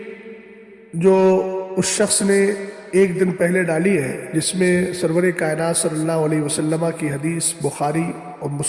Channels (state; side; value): identical; both; correlation 1.00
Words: جو اس شخص نے ایک دن پہلے ڈالی ہے، جس میں سرور کائنات صلی اللہ علیہ وسلم کی حدیث بخاری اور